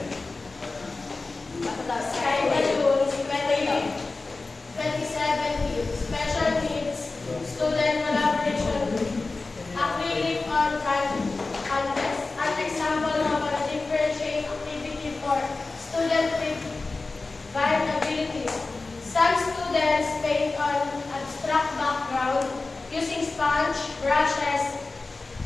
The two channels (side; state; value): right; quieter; 3.6 dB